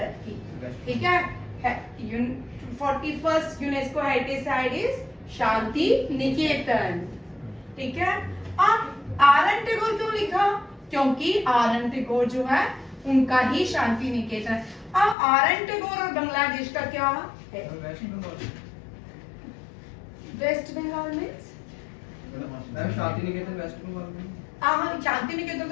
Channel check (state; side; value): drops out; right; at 15.2 s